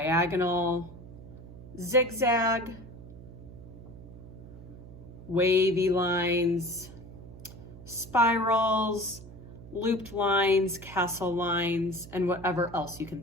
zigzag, wavy lines, spirals, looped lines, castle lines, and whatever else you can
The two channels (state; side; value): noise; right; hum, 16 dB below the sound